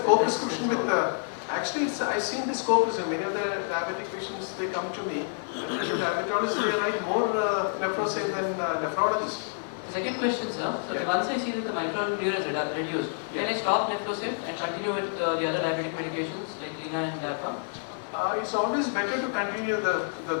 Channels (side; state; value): right; silent; digital silence